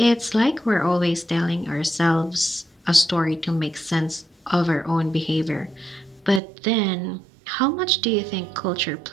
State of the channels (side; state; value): left; drops out; at 6.4 s